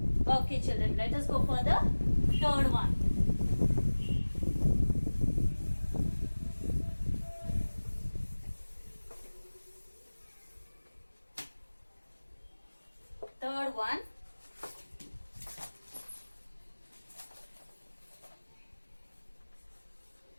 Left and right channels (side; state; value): both; inverted; correlation -1.00